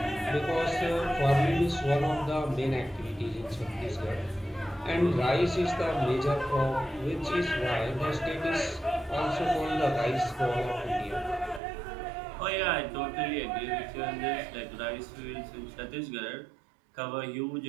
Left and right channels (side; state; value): left; drops out; at 11.6 s